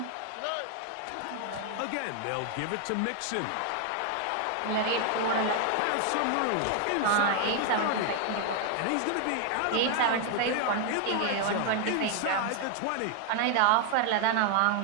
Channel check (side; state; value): both; different; correlation 0.00